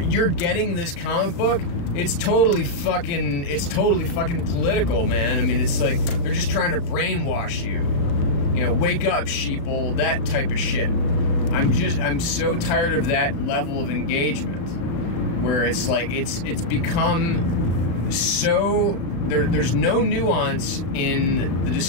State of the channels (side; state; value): right; late; 35 ms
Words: getting this comic book, it's totally fucking political, man. I mean, it's like they're just trying to brainwash you. Wake up, sheeple, that type of shit. I'm so tired of that level of engagement, where it's like it's become so there's no nuance in the